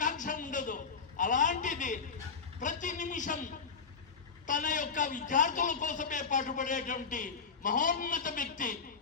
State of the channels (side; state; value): right; quieter; 5.5 dB